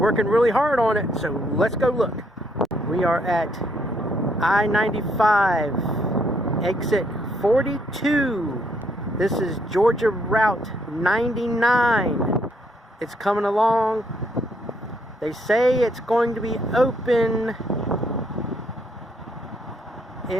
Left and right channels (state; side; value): normal; both; correlation 0.71